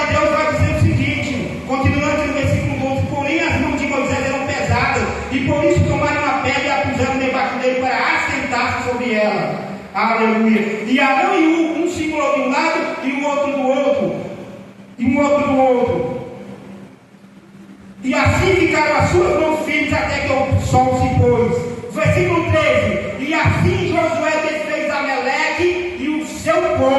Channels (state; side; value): identical; both; correlation 1.00